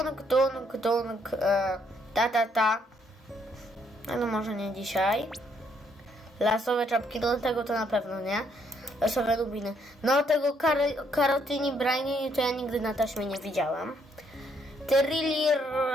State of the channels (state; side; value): normal; both; correlation 0.71